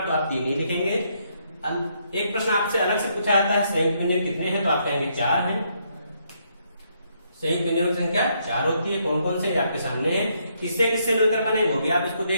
तो आप 3 ही लिखेंगे। एक प्रश्न आपसे अलग से पूछा जाता है संयुक्त व्यंजन कितने हैं, तो आप कहेंगे 4 हैं। संयुक्त व्यंजनों की संख्या 4 होती है। कौन कौन से आपके सामने हैं, किससे किससे मिलकर बने वो भी आप इसको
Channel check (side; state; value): both; inverted; correlation -0.74